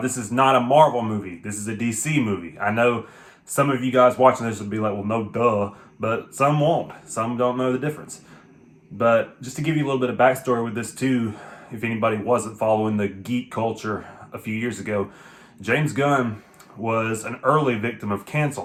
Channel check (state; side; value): identical; both; correlation 1.00